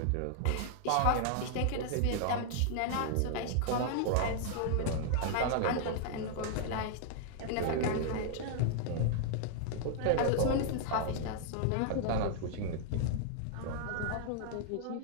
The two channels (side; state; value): both; different; correlation -0.01